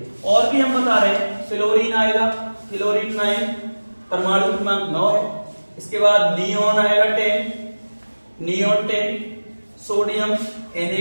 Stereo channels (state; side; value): inverted; both; correlation -1.00